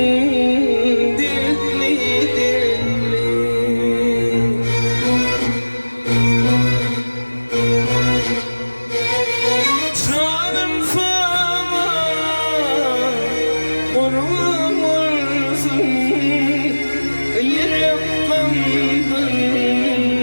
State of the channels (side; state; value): both; inverted; correlation -1.00